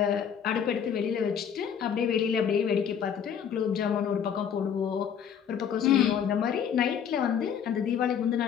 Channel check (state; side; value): quieter; right; 8.0 dB